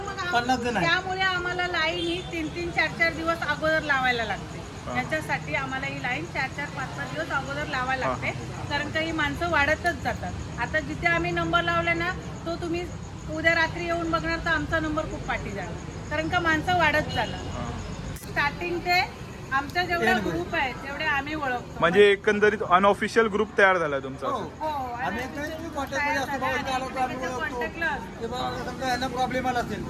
50 जण आहे. त्यामुळे आम्हाला लाईन ही 3-3, 4-4 दिवस अगोदर लावायला लागते. त्याच्यासाठी आम्हाला ही लाईन 4-4, 5-5 दिवस अगोदर लावायला लागते. कारण का ही माणसं वाढतच जातात. आता जिथे आम्ही नंबर लावले ना, तो तुम्ही उद्या रात्री येऊन बघणार तर आमचा नंबर खूप पाठी जाणार. कारण का माणसं वाढत जाणार. स्टार्टिंग ते आमचा जेवढा ग्रुप आहे तेवढे आम्ही ओळखतो. म्हणजे एकंदरीत अनऑफिशियल ग्रुप तयार झाला तुमचा हो. असं. हो, आणि आम्ही एकमेकांशी कॉन्टॅक्टमध्ये असतो, बाबा इथे आलो तर आम्ही ओळखतो. कॉन्टॅक्टला की बाबा समजा यांना प्रॉब्लेम आला असेल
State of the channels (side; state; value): both; identical; correlation 1.00